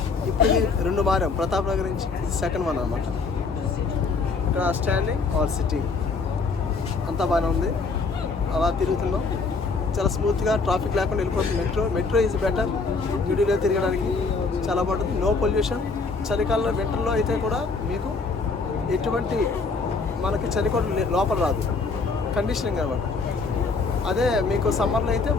ఇప్పుడు 2 మారాం, ప్రతాప్ నగర్ నుంచి సెకండ్ 1 అనమాట. ఇక్కడ స్టాండింగ్ ఆర్ సిట్టింగ్ అంతా బాగానే ఉంది. అలా తిరుగుతున్నాం, చాలా స్మూత్గా, ట్రాఫిక్ లేకుండా వెళ్ళిపోతుంది. Metro is better. న్యూఢిల్లీలో తిరగడానికి చాలా బాగుంటుంది. No pollution. చలికాలంలో వింటర్లో అయితే కూడా మీకు ఎటువంటి మనకి చలి కూడా లోపల రాదు, కండిషనింగ్ అనమాట. అదే మీకు సమ్మర్లో అయితే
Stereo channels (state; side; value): quieter; right; 4.3 dB